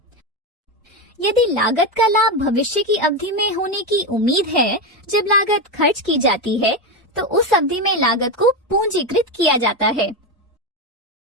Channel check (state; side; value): normal; both; correlation 0.12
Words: यदि लागत का लाभ भविष्य की अवधि में होने की उम्मीद है जब लागत खर्च की जाती है, तो उस अवधि में लागत को पूंजीकृत किया जाता है।